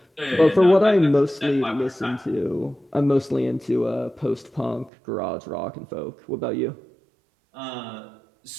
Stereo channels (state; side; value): drops out; left; at 4.9 s